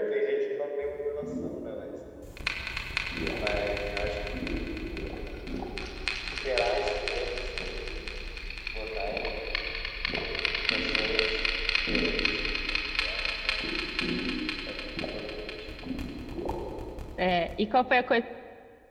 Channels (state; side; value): identical; both; correlation 1.00